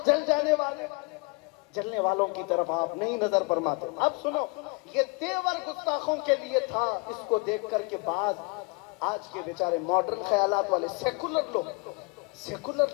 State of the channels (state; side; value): quieter; right; 30.5 dB